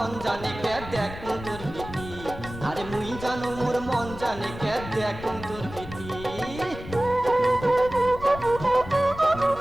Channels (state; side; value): noise; left; rumble, 12 dB below the sound